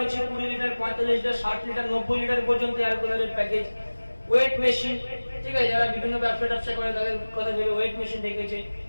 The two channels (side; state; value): both; inverted; correlation -1.00